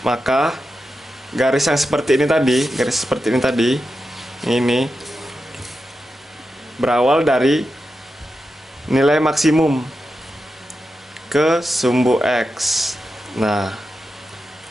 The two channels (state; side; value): normal; both; correlation 0.89